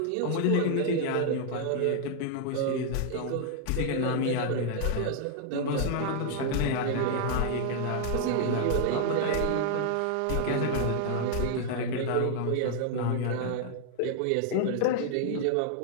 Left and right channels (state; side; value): different; both; correlation 0.00